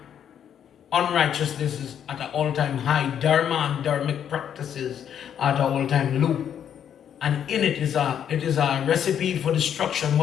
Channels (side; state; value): right; quieter; 9.1 dB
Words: Unrighteousness is at an all-time high. Dharma and dharmic practices are at an all-time low. And in it is a recipe for destruction.